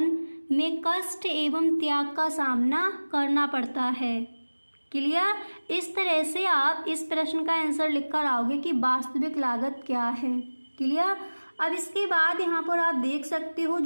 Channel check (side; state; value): both; inverted; correlation -1.00